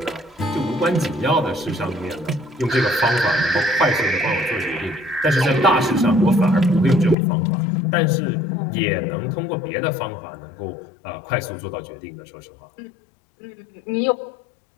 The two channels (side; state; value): right; drops out; at 7.2 s